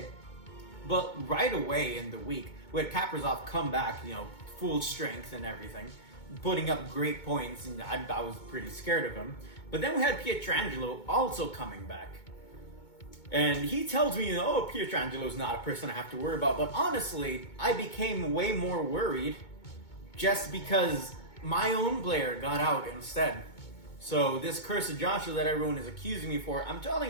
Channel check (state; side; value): late; right; 2.2 ms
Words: But right away in the week, we had Kaprizov come back, full strength and everything, putting up great points, and I was pretty scared of him. But then we had Pietrangelo also coming back. And he tells me, Pietrangelo's not a person I have to worry about. But honestly, I became way more worried just because my own player got out instead. So this Curse of Joshua that everyone is accusing me for, I'm